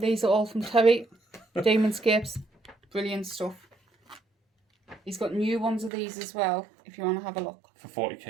are all from Terry. Demonscapes. Brilliant stuff. He's got new ones of these as well, if you want to have a look. For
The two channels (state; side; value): drops out; left; at 5.9 s